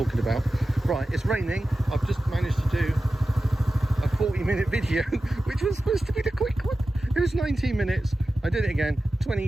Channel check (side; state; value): both; normal; correlation 0.94